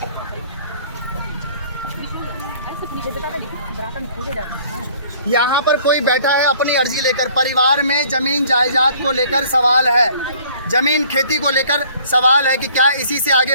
यहाँ पर कोई बैठा है अपनी अर्जी लेकर। परिवार में जमीन जायदाद को लेकर सवाल है, जमीन खेती को लेकर सवाल है कि क्या इसी से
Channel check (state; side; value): inverted; both; correlation -0.55